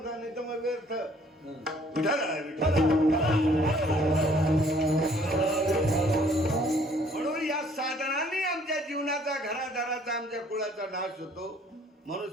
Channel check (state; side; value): normal; both; correlation 0.60